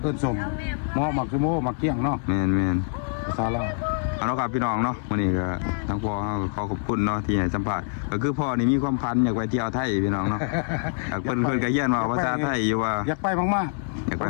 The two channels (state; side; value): silent; right; 62 dB below the other